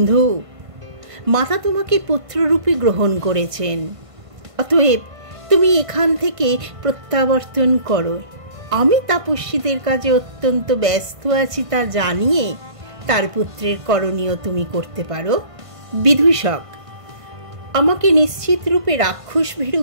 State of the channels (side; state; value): left; late; 1.5 ms